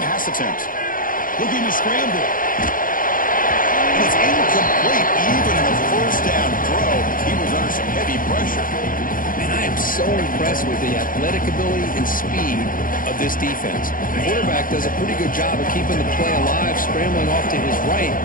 pass attempt. Looking to scramble. And it's incomplete, even in a first down throw. He was under some heavy pressure. And I am so impressed with the athletic ability and speed of this defense. The quarterback does a pretty good job of keeping the play alive, scrambling off to his right,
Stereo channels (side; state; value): right; late; 0.40 ms